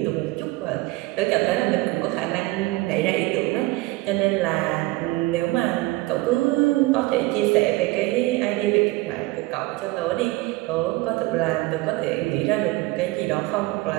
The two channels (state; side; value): quieter; left; 20.4 dB